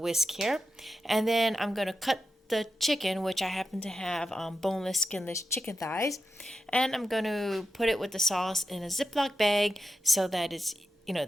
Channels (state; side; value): normal; both; correlation 0.89